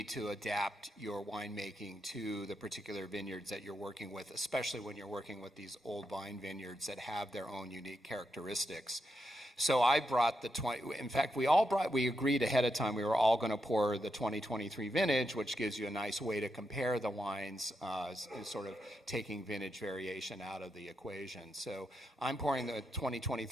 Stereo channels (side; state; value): both; normal; correlation 0.84